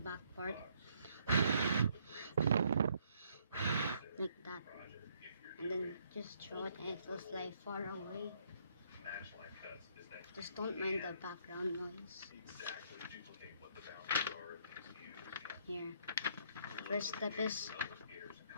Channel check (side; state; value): both; inverted; correlation -0.68